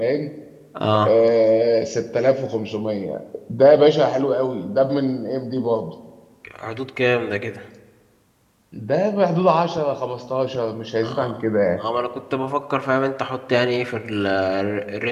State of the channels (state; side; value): identical; both; correlation 1.00